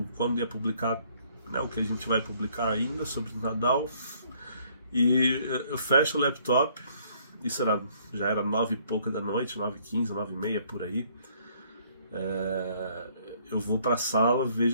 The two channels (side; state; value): both; inverted; correlation -0.64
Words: ia publicar, né, o que a gente vai publicar ainda sobre o Nadal. E eu fecho o laptop, já era 9 e pouca da noite, 9h15, 9h30 por aí. Eu vou pra sala,